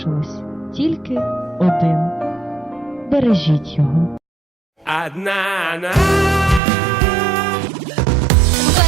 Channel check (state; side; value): drops out; left; at 6.6 s